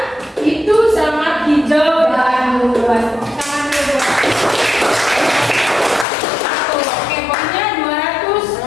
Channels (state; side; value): drops out; right; at 6.1 s